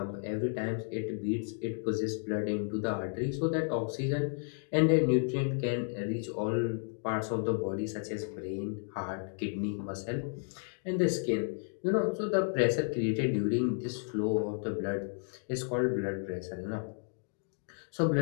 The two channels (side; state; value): right; silent; 56 dB below the other